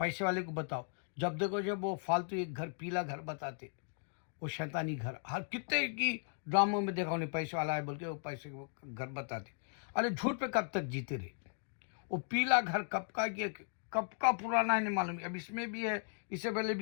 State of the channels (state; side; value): silent; right; 53 dB below the other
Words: वाले को बताओ, जब देखो जब वो फालतू एक घर, पीला घर बताते, वो शैतानी घर, हर कितने की ड्रामों में देखा उन्हें पैसे वाला है बोल के वो पैसे वो घर बताते। अरे झूठ पे कब तक जीते रहे? वो पीला घर कब का पुराना है नहीं मालूम, अब इसमें भी है, इससे पहले